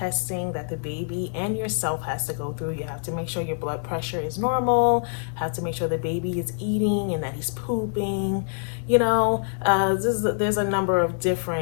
that the baby and yourself has to go through. You have to make sure your blood pressure is normal, have to make sure the baby is eating and that he's pooping. You know, there's a number of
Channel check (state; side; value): silent; right; digital silence